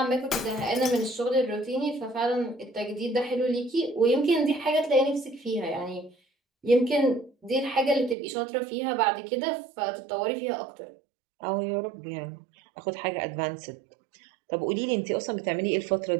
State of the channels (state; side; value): drops out; left; at 8.2 s